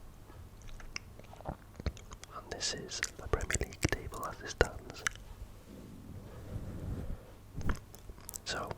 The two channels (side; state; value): both; identical; correlation 1.00